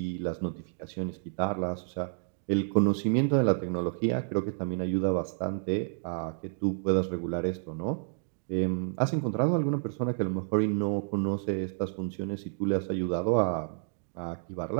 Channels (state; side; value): silent; left; digital silence